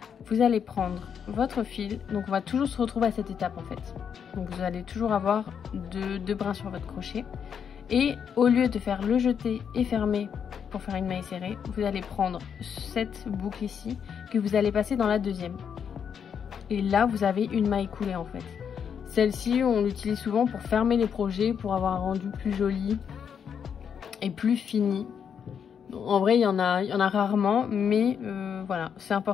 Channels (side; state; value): right; quieter; 7.5 dB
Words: Vous allez prendre votre fil, donc on va toujours se retrouver à cette étape en fait. Donc vous allez toujours avoir deux brins sur votre crochet. Et au lieu de faire le jeté et fermer pour faire une maille serrée, vous allez prendre cette boucle ici que vous allez passer dans la deuxième. Et là, vous avez une maille coulée en fait. Celle-ci, on l'utilise souvent pour fermer les projets, pour avoir un rendu plus joli et plus fini. En vrai, il y en a rarement, mais voilà, c'est